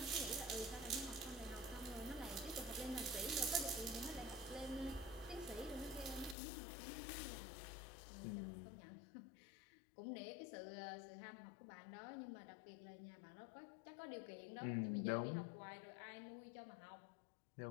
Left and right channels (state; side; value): drops out; right; at 6.4 s